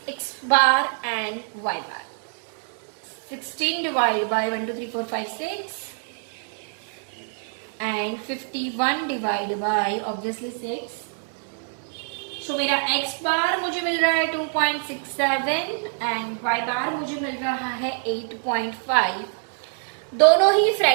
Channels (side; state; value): left; silent; 62 dB below the other